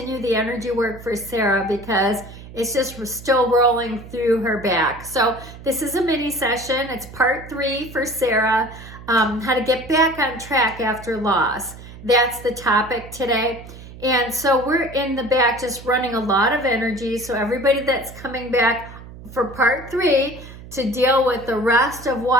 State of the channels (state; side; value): noise; right; hum, 16 dB below the sound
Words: the energy work for Sarah because it's just still rolling through her back. So this is a mini session. It's part 3 for Sarah, how to get back on track after loss. That's the topic today. And so we're in the back just running a lot of energy. So everybody that's coming back for part 3 to deal with the rest of